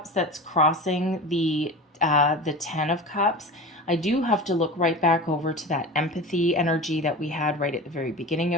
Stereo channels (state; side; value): normal; both; correlation 0.32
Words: that's crossing the 10 of Cups, I do have to look right back over to that empathy energy that we had right at the very beginning